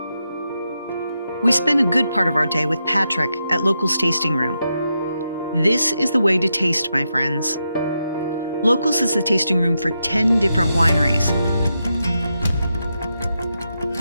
We spent a good part of our day with Patrick at Locals Tasting Room. This is the way to taste, my friends. Locals is the tasting room for 10 different wineries.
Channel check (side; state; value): both; inverted; correlation -0.86